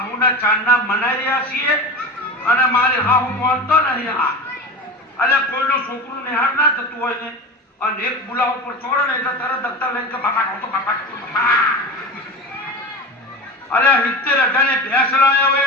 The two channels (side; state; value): both; normal; correlation 0.29